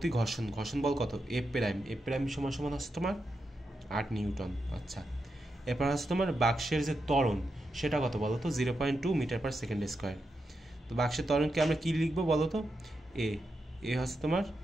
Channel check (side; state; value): both; normal; correlation 0.86